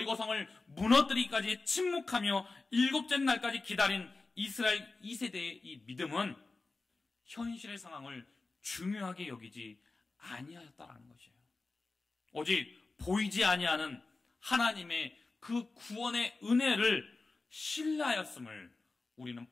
무너뜨리기까지 침묵하며 7째 날까지 기다린 이스라엘 2세대의 이 믿음은 현실의 상황을 중요하게 여기지 아니하였다라는 것이에요. 오직 보이지 아니하는 하나님의 그 구원의 은혜를 신뢰하였음을 우리는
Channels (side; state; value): right; quieter; 3.6 dB